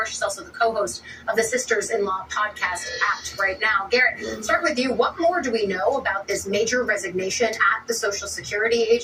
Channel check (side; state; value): both; identical; correlation 1.00